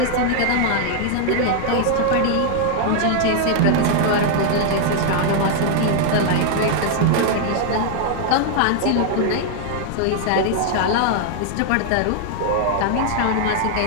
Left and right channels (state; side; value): different; both; correlation 0.00